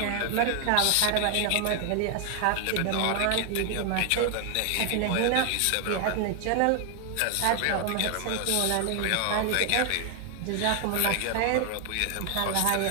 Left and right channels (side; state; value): both; different; correlation 0.00